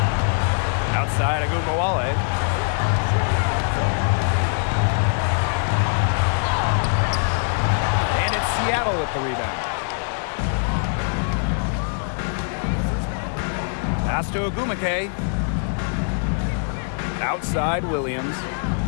Outside Ogunbowale. Seattle with the rebound. Pass to Ogwumike. Outside Williams.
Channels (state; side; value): silent; right; 64 dB below the other